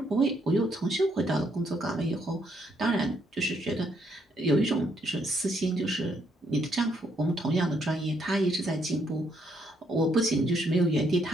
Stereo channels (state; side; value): normal; both; correlation 0.73